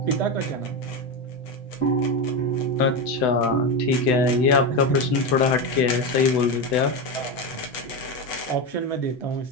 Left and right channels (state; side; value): late; right; 7.9 ms